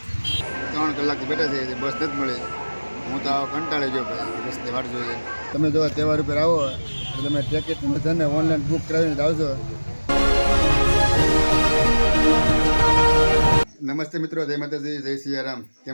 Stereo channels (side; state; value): both; inverted; correlation -1.00